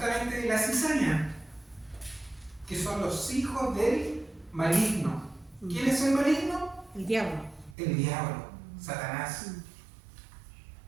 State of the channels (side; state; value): left; drops out; at 7.8 s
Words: de la cizaña, que son los hijos del maligno. ¿Quién es el maligno? El diablo. El diablo, Satanás.